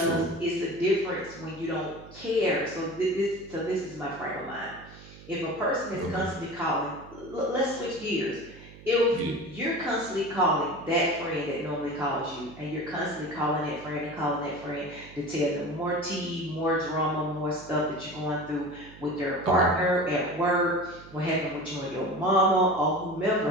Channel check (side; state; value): right; noise; hum, 19 dB below the sound